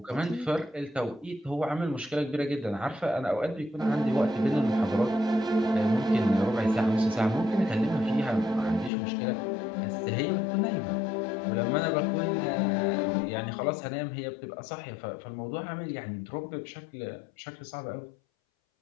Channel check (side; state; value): right; drops out; at 8.9 s